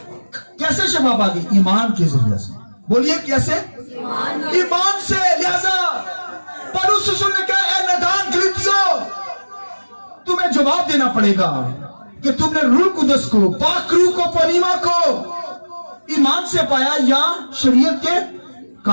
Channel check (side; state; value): both; inverted; correlation -1.00